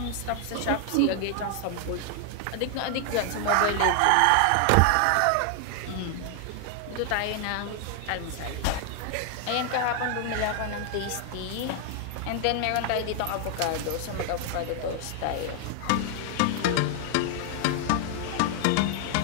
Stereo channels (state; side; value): different; both; correlation 0.00